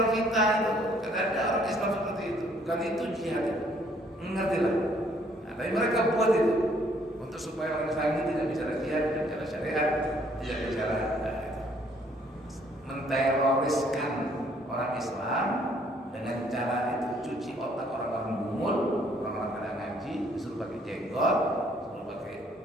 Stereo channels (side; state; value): both; normal; correlation 0.64